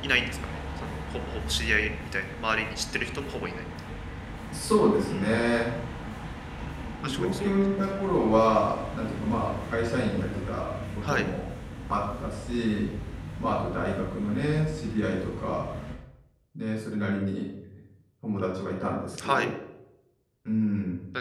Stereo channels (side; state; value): both; identical; correlation 1.00